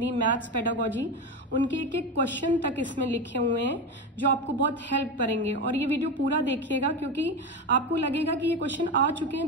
मैथ्स, पेडागोजी, उनके एक एक क्वेश्चन तक इसमें लिखे हुए हैं जो आपको बहुत हेल्प करेंगे। और ये वीडियो पूरा देखिएगा क्योंकि आपको लगेगा कि ये क्वेश्चन आ चुके हैं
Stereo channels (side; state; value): both; normal; correlation 0.18